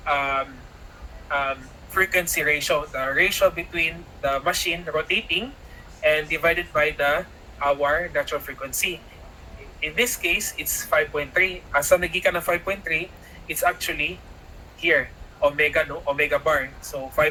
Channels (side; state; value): both; identical; correlation 1.00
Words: frequency ratio, the ratio between the machine rotating and divided by our natural frequency. In this case, it's 5.3. Asa nagikan na 5.3, it's actually here. omega, no, omega bar. So